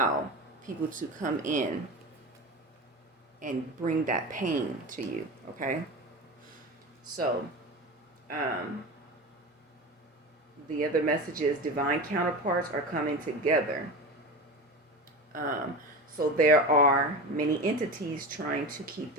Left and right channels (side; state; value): both; normal; correlation 0.27